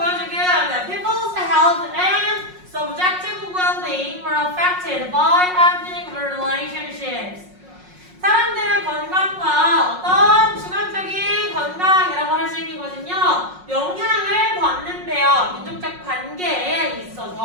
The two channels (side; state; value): left; late; 5.5 ms